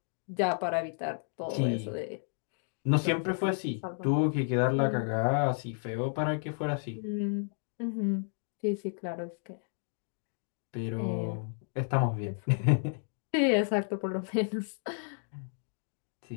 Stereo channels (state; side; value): silent; right; digital silence